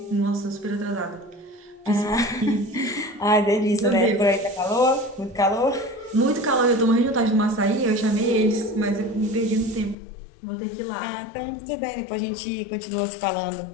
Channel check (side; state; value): right; drops out; at 10.0 s